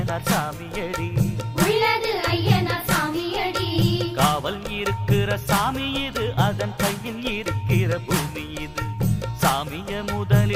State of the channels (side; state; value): both; identical; correlation 1.00